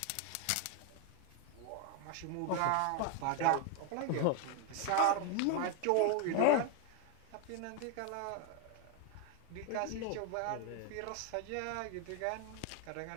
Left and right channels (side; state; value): both; different; correlation 0.01